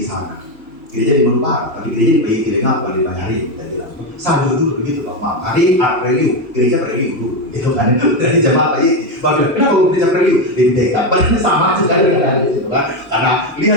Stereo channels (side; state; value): both; normal; correlation 0.10